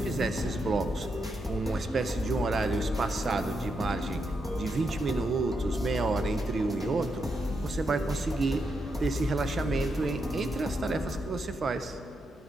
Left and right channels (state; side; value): normal; both; correlation 0.83